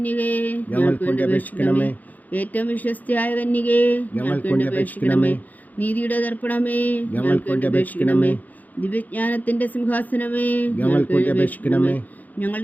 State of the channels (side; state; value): right; late; 0.081 ms